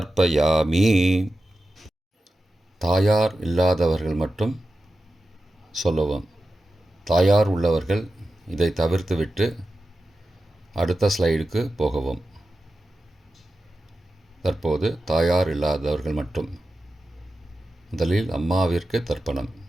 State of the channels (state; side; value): normal; both; correlation 0.92